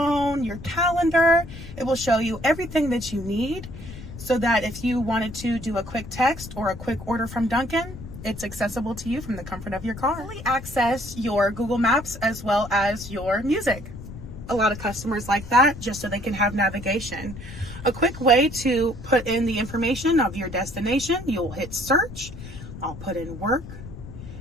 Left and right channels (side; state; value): left; noise; rumble, 13 dB below the sound